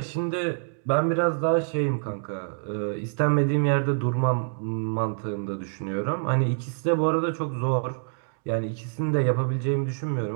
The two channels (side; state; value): left; silent; digital silence